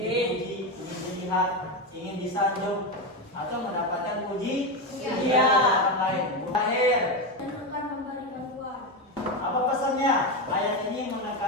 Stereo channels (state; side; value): normal; both; correlation 0.13